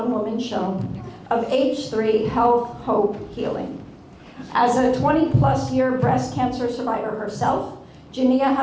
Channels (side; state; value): both; identical; correlation 1.00